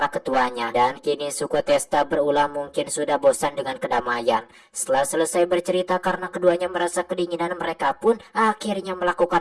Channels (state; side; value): identical; both; correlation 1.00